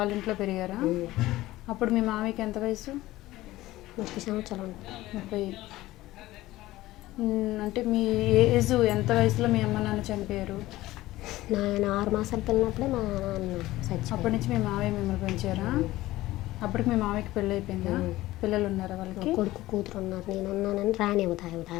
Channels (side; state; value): right; quieter; 17.0 dB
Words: ఇంట్లో పెరిగారా? అప్పుడు మీ మామయ్యకి ఎంత వయసు? 30 సంవత్సరాలు. 30. అంటే మీ ఏజ్ ఎంత వయసులో మీ అమ్మ నాన్న చనిపోయారు? నాయన 6 మాసాలు పిల్లనప్పుడే మా నాన్న చచ్చిపోయాడు. అప్పటి నుంచి మీ మామయ్య మిమ్మల్ని పెంచారా? అప్పటికి మీ మామయ్యకి పెళ్ళి అయిపోయిందా? పిల్లలు ఉన్నారా వాళ్ళకి? కొడుకు కూతురు ఉన్నారు. నేను ఉన్నానని రానివ్వదు